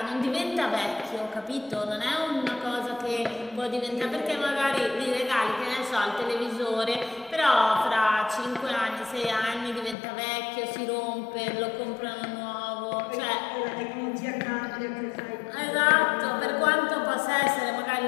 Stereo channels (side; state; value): right; drops out; at 10.0 s